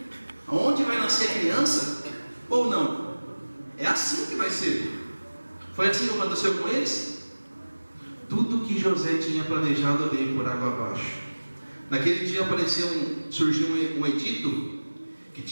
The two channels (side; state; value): both; inverted; correlation -1.00